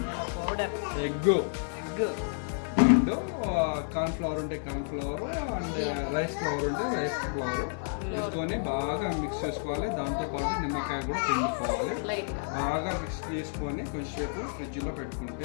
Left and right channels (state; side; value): silent; right; 58 dB below the other